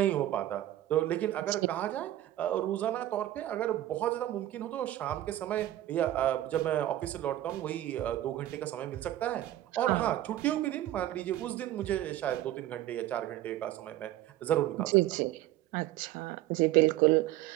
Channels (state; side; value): quieter; left; 14.0 dB